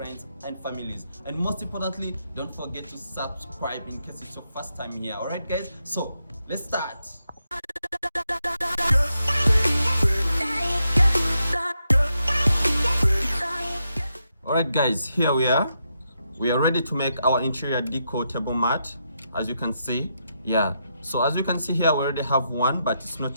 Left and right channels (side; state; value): both; inverted; correlation -0.83